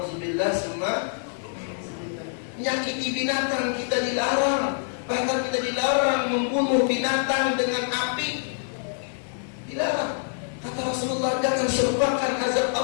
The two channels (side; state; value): right; silent; digital silence